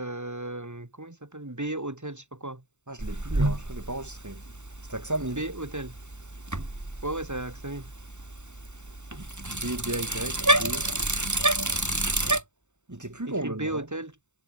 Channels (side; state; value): left; late; 0.84 ms